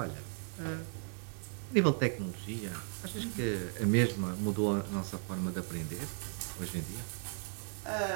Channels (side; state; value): left; silent; 54 dB below the other